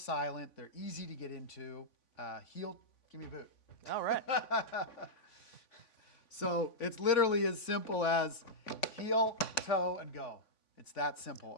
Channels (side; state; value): right; late; 3.5 ms